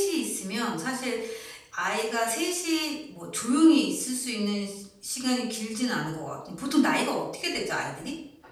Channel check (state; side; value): identical; both; correlation 1.00